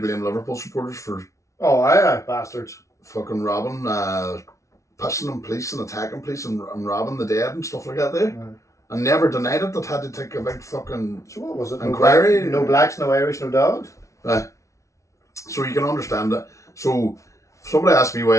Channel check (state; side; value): late; right; 0.14 ms